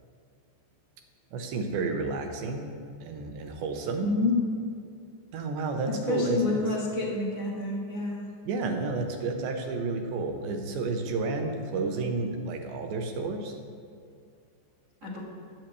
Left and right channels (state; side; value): late; left; 14 ms